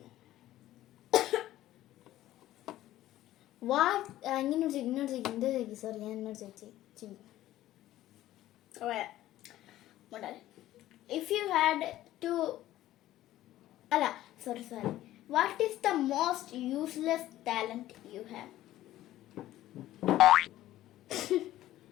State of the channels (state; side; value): quieter; right; 14.5 dB